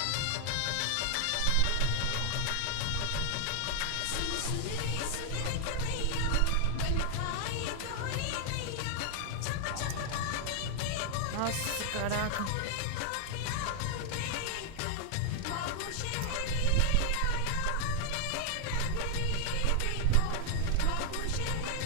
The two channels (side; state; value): both; different; correlation 0.00